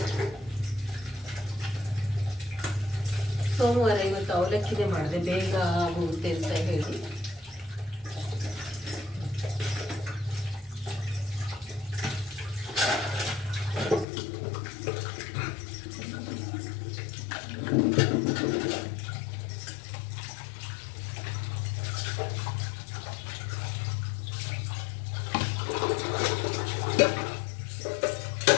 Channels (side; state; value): right; drops out; at 14.1 s